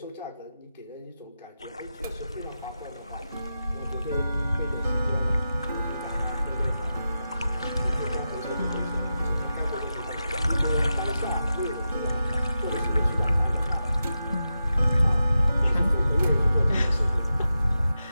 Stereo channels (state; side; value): inverted; both; correlation -0.90